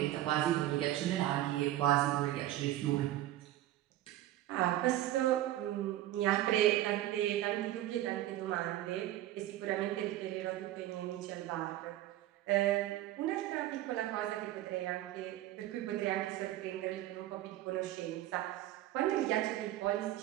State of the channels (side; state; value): left; quieter; 14.4 dB